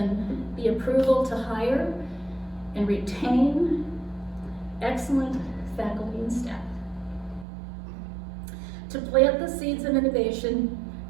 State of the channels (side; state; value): left; drops out; at 7.5 s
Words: the approval to hire and retain excellent faculty and staff, to plant the seeds of innovation